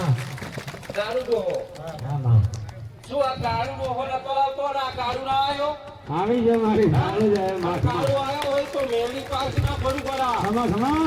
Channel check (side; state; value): both; identical; correlation 1.00